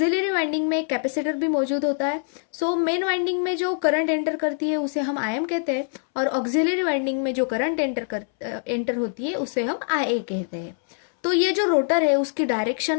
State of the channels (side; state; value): right; silent; 63 dB below the other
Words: वाइंडिंग में एक कैपेसिटर भी मौजूद होता है. मेन वाइंडिंग में जो करंट एंटर करती है उसे हम आईएम कहते हैं और ऑक्सिलरी वाइंडिंग में जो करंट एंटर होती है उसे हम आईए कहते हैं. तो ये जो रोटर है उसकी